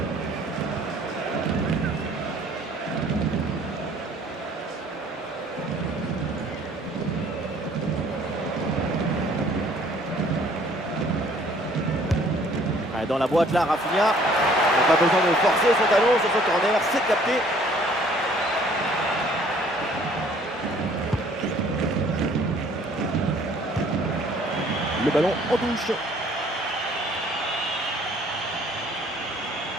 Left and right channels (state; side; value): normal; both; correlation 0.57